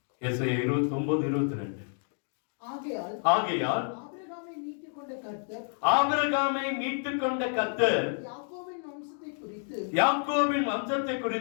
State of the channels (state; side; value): silent; right; 57 dB below the other